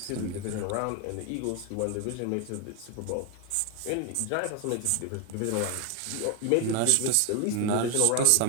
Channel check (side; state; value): both; different; correlation 0.01